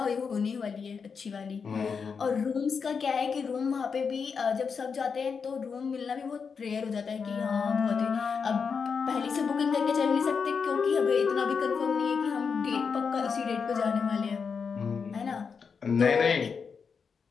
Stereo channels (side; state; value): right; quieter; 5.8 dB